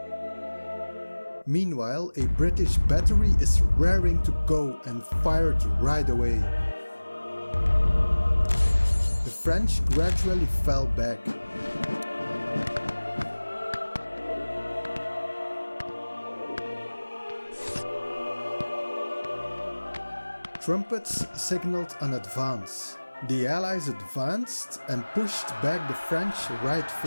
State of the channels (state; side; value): inverted; both; correlation -1.00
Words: Meanwhile, a British battery is raring to go and fired right away. The French gradually fell back. Trumpets signaled an advance. The Allies advanced and pushed back the French right